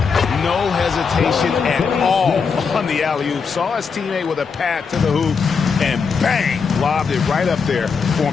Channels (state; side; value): quieter; right; 5.6 dB